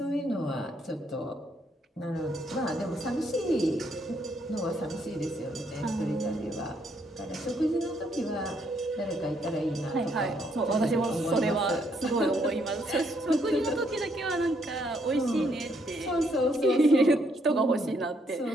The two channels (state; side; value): normal; both; correlation 0.72